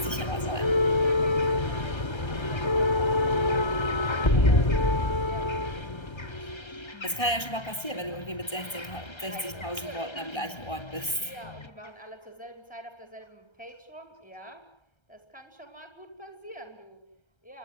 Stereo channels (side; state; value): right; late; 1.3 ms